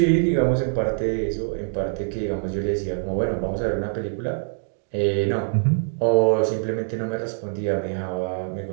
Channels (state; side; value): silent; left; digital silence